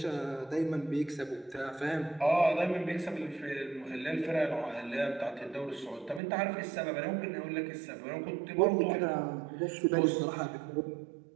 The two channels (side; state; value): left; drops out; at 6.2 s